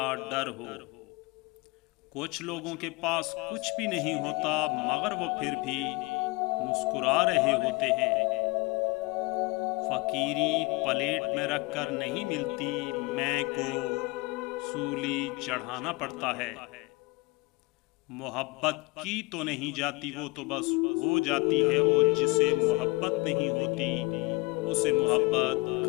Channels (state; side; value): quieter; right; 25.1 dB